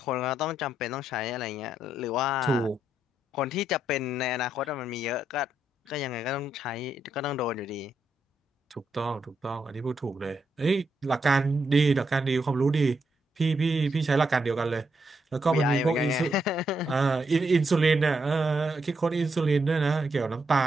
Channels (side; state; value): both; normal; correlation 0.80